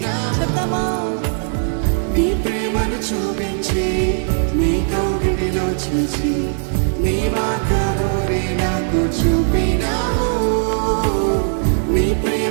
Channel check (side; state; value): left; silent; digital silence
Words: నీ ప్రేమను చూపించి నీ కౌగిలిలో చేసి నీ మార్గమునే నాకు చూపినావు నీ